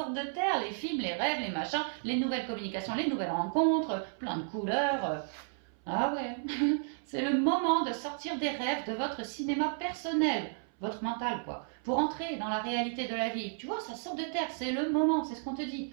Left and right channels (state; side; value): silent; left; 56 dB below the other